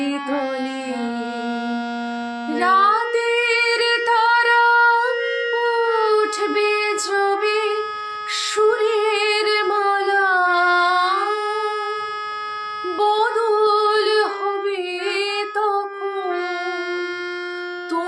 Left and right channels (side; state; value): both; identical; correlation 1.00